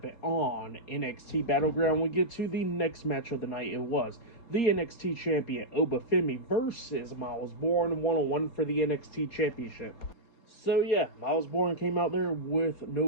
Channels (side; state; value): right; late; 4.3 ms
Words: on NXT Battleground, we get to the next match of the night. It was the NXT Champion, Obafemi, versus Miles Bourne, one-on-one for the NXT Championship. So yeah, Miles Bourne came out there with